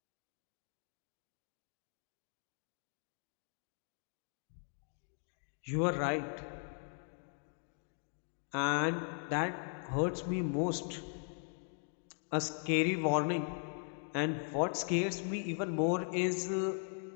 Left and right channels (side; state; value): right; silent; 52 dB below the other